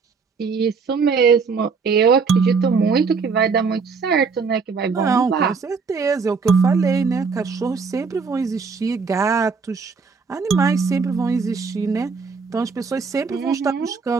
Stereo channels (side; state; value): left; quieter; 5.1 dB